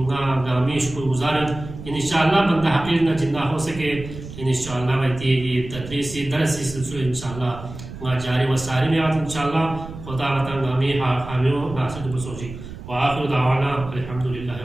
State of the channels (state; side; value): noise; right; rumble, 12 dB below the sound